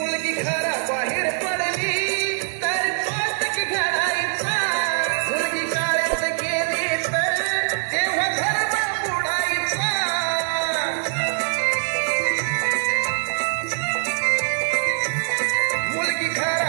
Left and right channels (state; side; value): silent; left; 63 dB below the other